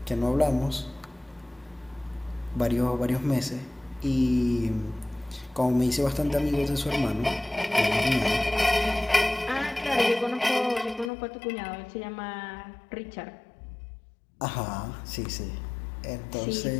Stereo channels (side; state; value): right; drops out; at 11.1 s